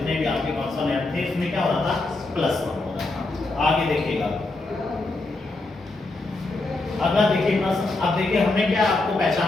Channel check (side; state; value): right; quieter; 3.1 dB